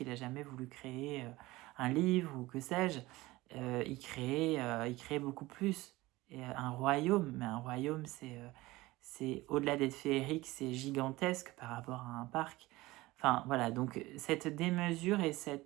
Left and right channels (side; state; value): left; quieter; 19.5 dB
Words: il a jamais voulu créer un livre ou que sais-je. Il créait beaucoup plus. Et un royaume, mais un royaume, c'est au-delà d'être féerique, c'est gigantesque par rapport à un parc. Enfin, voilà, donc cette démesure et